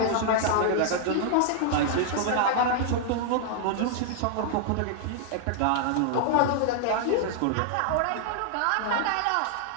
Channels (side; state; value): both; different; correlation -0.01